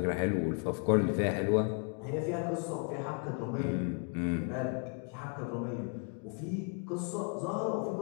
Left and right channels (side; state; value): right; quieter; 39.0 dB